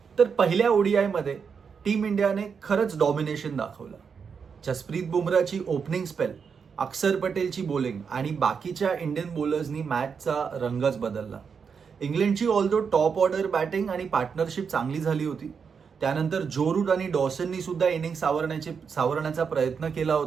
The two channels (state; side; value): quieter; left; 6.2 dB